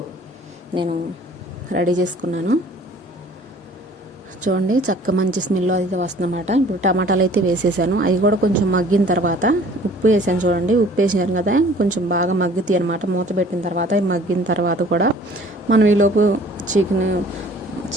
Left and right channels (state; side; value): normal; both; correlation 0.52